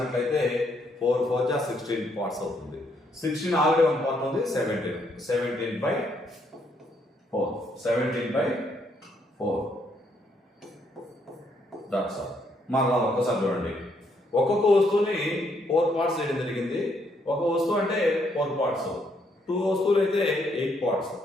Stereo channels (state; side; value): normal; both; correlation 0.72